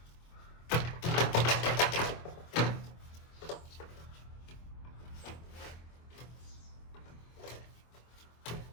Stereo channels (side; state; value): right; late; 24 ms